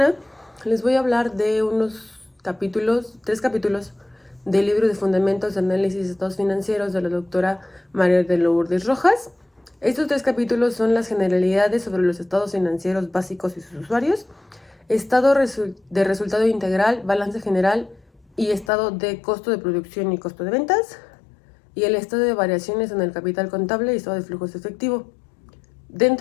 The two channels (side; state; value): right; drops out; at 18.7 s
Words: les voy a hablar de tres capítulos del libro de Fundamentos de Análisis de Estados Financieros de la doctora María de Lourdes Rojas. Estos tres capítulos son las generalidades sobre los estados financieros básicos y sus usuarios, estado de resultado integral, balance general y estado de costo de producción y costo de ventas, y el estado de variaciones en el capital contable y estado de flujos efectivo.